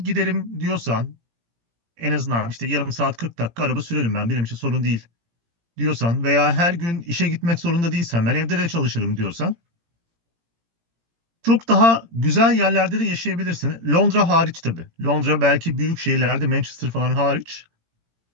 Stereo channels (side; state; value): left; late; 17 ms